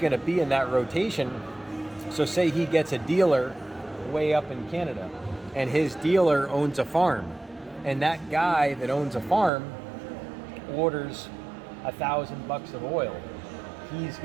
to be in that rotation. So say he gets a dealer way up in Canada, and his dealer owns a farm, and that guy that owns a farm orders $1,000 of oil. He's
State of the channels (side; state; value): left; drops out; at 9.5 s